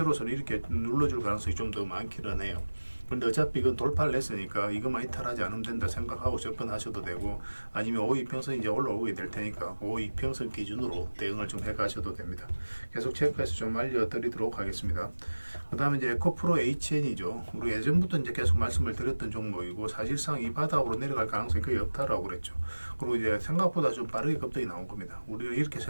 이렇게 눌러줄 가능성이 좀 더 많기는 해요. 근데 어차피 이건 돌파를 했으니까 이것만 이탈하지 않으면 된다 생각하고 접근하셔도 되고 아니면 5이평선 이제 올라오게 될 테니까 5이평선 기준으로 대응을 좀 해가셔도 됩니다. 계속 체크해서 좀 알려드리도록 하겠습니다. 그 다음에 이제 에코프로 HN이죠. 우리 예전부터 이제 계속 말씀을 드렸던 종목이고 사실상 이 바닥으로 내려갈 가능성이 거의 없다라고 그랬죠. 그리고 이제 생각보다 좀 빠르게 급등이 나온 겁니다. 우리가 이렇게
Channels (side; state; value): both; inverted; correlation -1.00